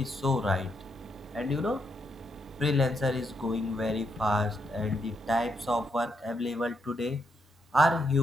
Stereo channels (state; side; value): normal; both; correlation 0.79